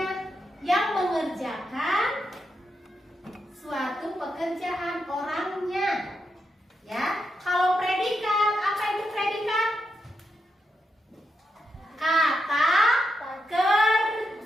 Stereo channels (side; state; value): both; normal; correlation 0.84